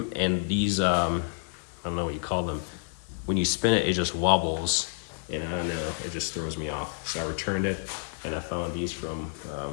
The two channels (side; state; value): right; silent; digital silence